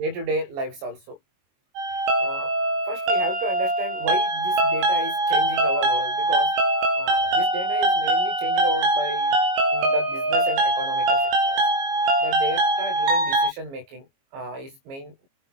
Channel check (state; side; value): late; left; 22 ms